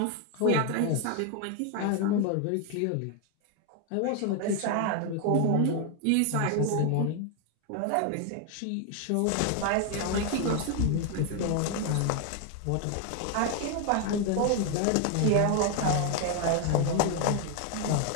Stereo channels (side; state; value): both; different; correlation 0.01